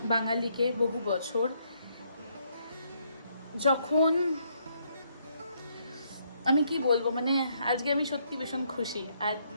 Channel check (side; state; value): both; inverted; correlation -0.72